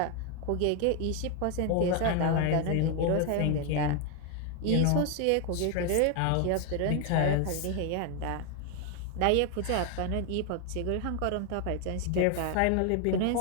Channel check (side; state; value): both; different; correlation 0.01